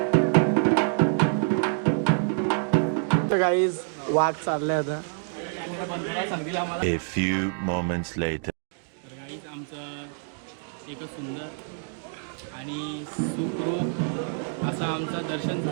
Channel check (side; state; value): left; silent; 60 dB below the other